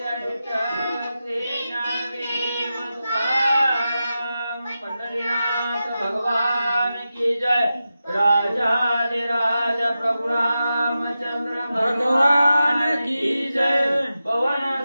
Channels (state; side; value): inverted; both; correlation -0.91